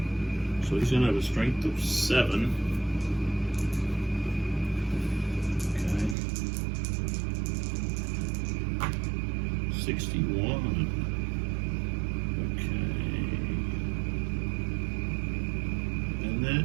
So he's going to have a strength of 7. 61. Okay. And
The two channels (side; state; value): left; drops out; at 6.2 s